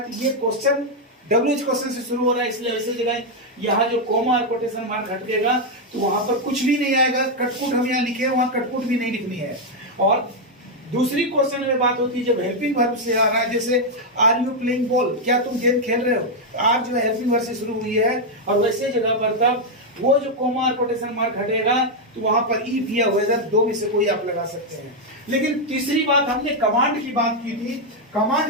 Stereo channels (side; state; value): both; normal; correlation 0.00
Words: तो ये क्वेश्चन WH क्वेश्चन से शुरू हो रहा है, इसलिए वैसे जगह यहाँ जो कोमा और कोटेशन मार्क हटेगा तो वहां पर कुछ भी नहीं आएगा। कटकुट हम यहाँ लिखे, वहां कटकुट भी नहीं लिखनी है। और दूसरी क्वेश्चन में बात होती है जब हेल्पिंग वर्ब से आ रहा है, जैसे आर यू प्लेइंग बॉल, क्या तुम गेम खेल रहे हो, आर जो है हेल्पिंग वर्ब से शुरू हुई है, और वैसे जगह पर तब वो जो कोमा और कोटेशन मार्क हटेगा तो वहां पर इफ या वेदर दो में से कोई आप लगा सकते हैं। लेकिन तीसरी बात, हमने कमांड की बात की थी।